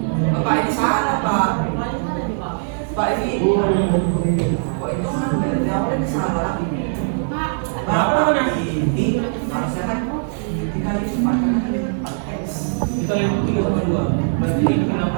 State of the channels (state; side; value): silent; left; digital silence